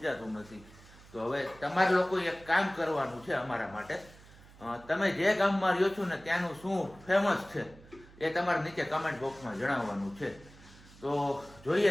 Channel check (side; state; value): right; noise; hum, 22 dB below the sound